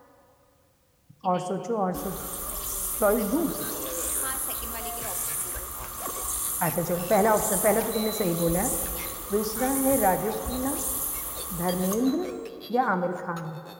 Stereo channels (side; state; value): both; identical; correlation 1.00